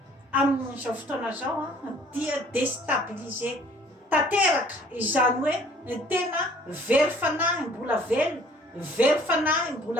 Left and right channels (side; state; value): both; normal; correlation 0.56